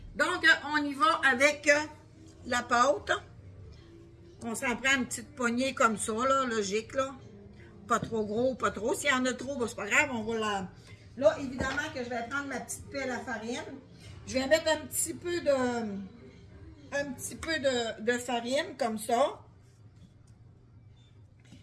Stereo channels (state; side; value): identical; both; correlation 1.00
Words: Donc, on y va avec la pâte. On s'en prend une petite poignée comme ça, là, logique, là. Pas trop gros, pas trop. S'il y en a trop, ben, c'est pas grave, on va la... Là, évidemment que je vais prendre ma petite pelle à farine. Je vais mettre un petit peu de farine, comme ça.